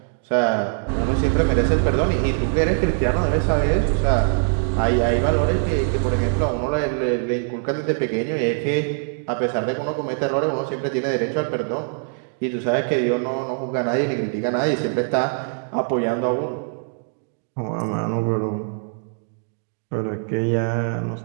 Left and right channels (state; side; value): silent; left; 64 dB below the other